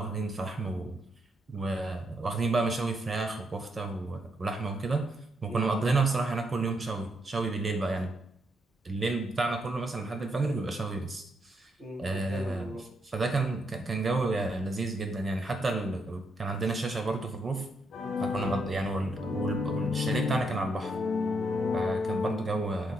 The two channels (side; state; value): both; normal; correlation 0.78